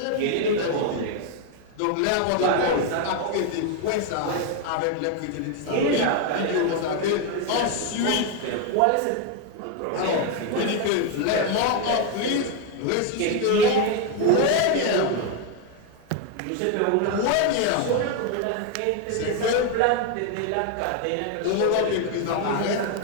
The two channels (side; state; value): both; different; correlation 0.01